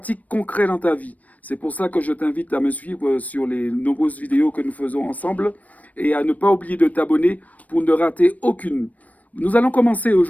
concret dans ta vie. C'est pour ça que je t'invite à me suivre sur les nombreuses vidéos que nous faisons ensemble et à ne pas oublier de t'abonner pour ne rater aucune. Nous allons commencer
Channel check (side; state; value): right; late; 0.072 ms